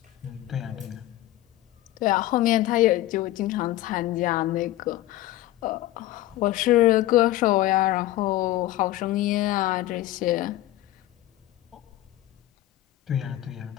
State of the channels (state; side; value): quieter; right; 15.4 dB